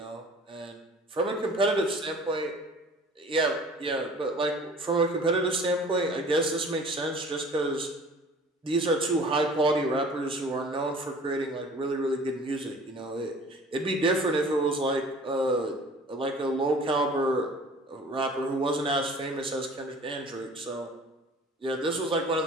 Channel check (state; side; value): normal; both; correlation 0.47